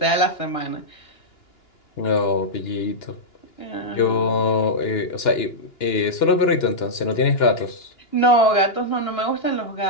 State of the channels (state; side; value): late; right; 2.9 ms